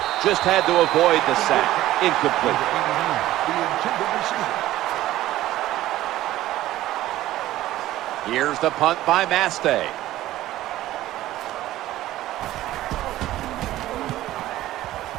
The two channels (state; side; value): quieter; left; 14.9 dB